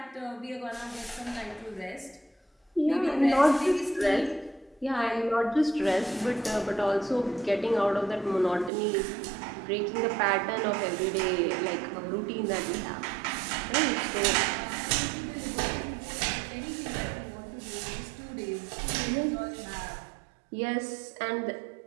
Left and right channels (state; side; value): drops out; left; at 8.7 s